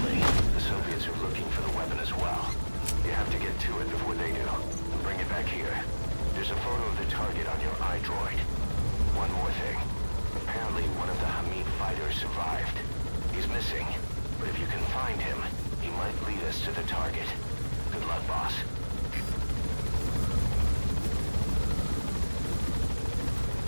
the Soviets are looking for the weapon as well. You have to get to it before they do, and bring it back here. There's a photo of the target on your iDroid. One more thing. Apparently one of the Hamid fighters survived. He's missing, but if you can find him, he might lead us to the target. Good luck, boss.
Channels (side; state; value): both; inverted; correlation -1.00